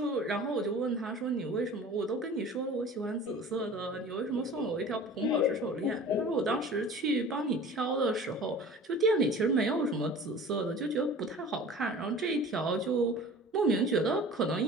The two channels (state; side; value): normal; both; correlation 0.42